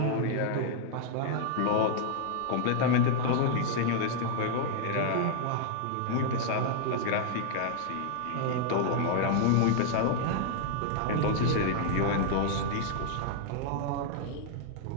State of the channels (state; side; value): different; both; correlation 0.00